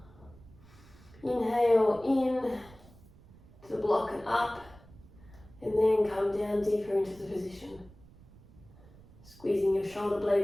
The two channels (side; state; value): right; noise; rumble, 23 dB below the sound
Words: Inhale in to the block and up, and then come down deeper into the position. Squeezing your shoulder